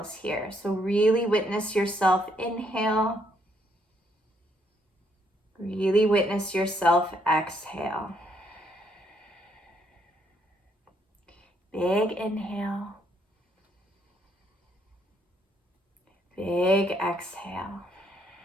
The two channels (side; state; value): both; normal; correlation 0.71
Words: here. So really witness yourself inhale. Really witness yourself exhale. Big inhale. Big exhale.